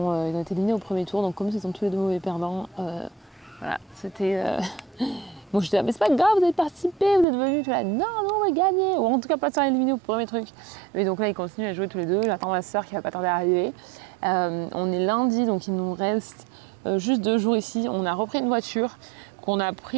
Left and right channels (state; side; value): drops out; left; at 7.2 s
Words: éliminés au premier tour. Donc comme ils sont tous les deux mauvais perdants, voilà, c'était... Bon, je disais, mais c'est pas grave, vous avez participé, vous êtes venus, tu vois, non, on va gagner, ou en tout cas pas se faire éliminer au premier truc. Mais donc là, ils continuent à jouer tous les deux. J'attends ma soeur qui va pas tarder à arriver. On est lundi, donc il nous reste juste 2 jours ici. On a repris une voiture qu'on a